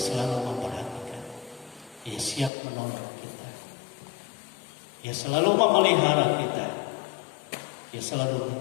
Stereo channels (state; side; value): drops out; right; at 2.5 s